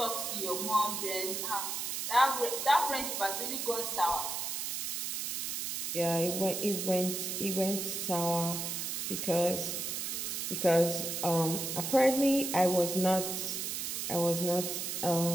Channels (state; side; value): noise; right; hiss, 3 dB below the sound